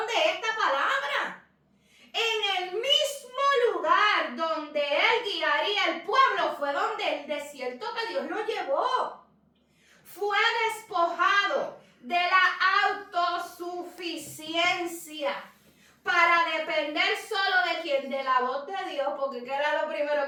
de esta palabra. En el mismo lugar donde él guiaría el pueblo fue donde el desierto que Dios lo llevó. Fue despojado de la autosuficiencia para depender solo de quién, de la voz de Dios, porque ¿qué era lo primero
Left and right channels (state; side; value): identical; both; correlation 1.00